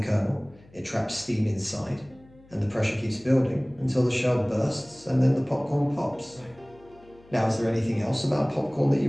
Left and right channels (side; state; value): left; noise; hum, 26 dB below the sound